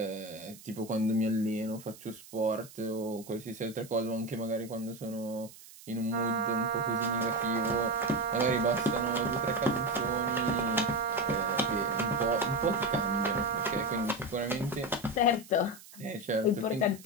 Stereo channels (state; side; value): noise; right; hiss, 19 dB below the sound